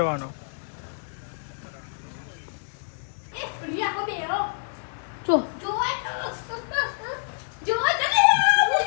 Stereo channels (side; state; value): right; silent; digital silence